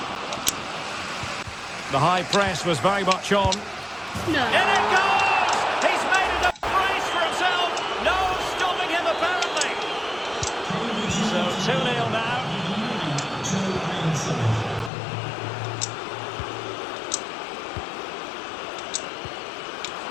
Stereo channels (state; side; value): drops out; right; at 14.9 s